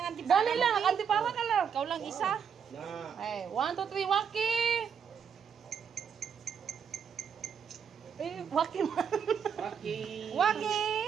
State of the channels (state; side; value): quieter; left; 7.3 dB